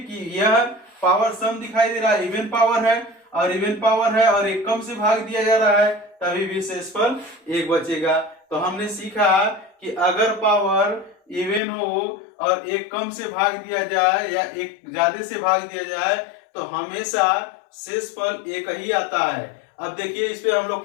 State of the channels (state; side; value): drops out; right; at 11.6 s